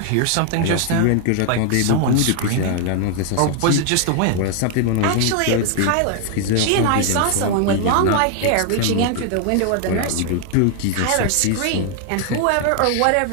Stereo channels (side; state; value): both; different; correlation 0.00